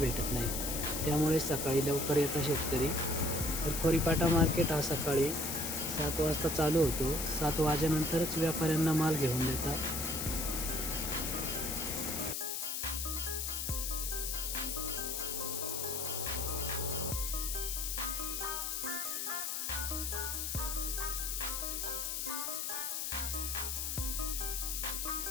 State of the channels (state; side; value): noise; left; hiss, 2 dB below the sound